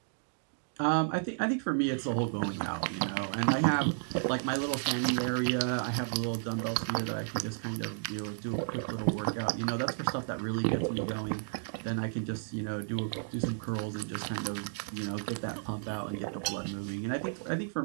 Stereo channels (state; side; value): silent; left; digital silence